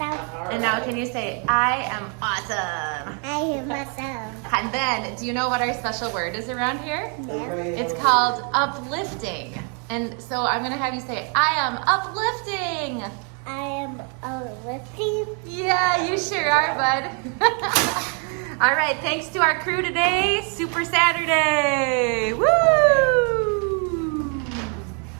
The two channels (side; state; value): left; quieter; 39.3 dB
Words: And now can you say, I am awesome? I am awesome. And then, do you know what our special word is around here? No. It's called uplifting. And so I'm gonna have you say, I am uplifting. I am lifting. Yeah, you sure are, bud. All right, thanks to our crew today. Super Saturday. Woo!